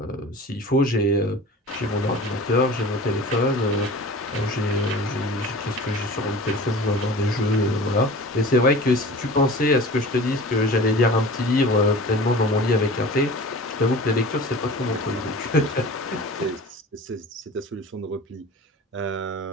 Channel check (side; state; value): both; normal; correlation 0.38